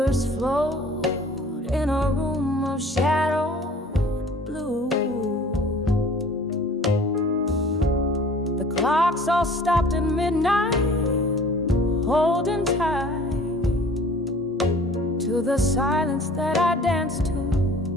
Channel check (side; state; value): both; normal; correlation 0.49